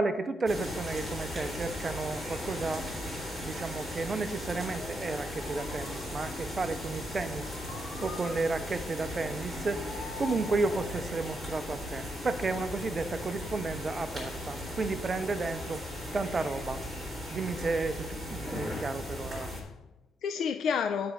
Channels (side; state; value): both; normal; correlation 0.81